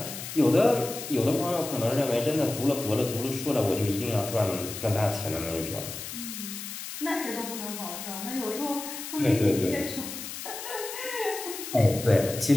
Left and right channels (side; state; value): left; noise; hiss, 8 dB below the sound